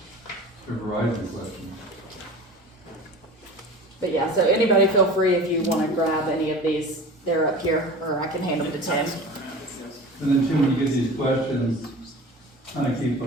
they're Verizon questions. But yeah, so anybody feel free if you wanna grab any of these, they're up here, or I can hand them to Tim. And then Tim, when you get these questions, kind of keep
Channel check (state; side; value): normal; both; correlation 0.37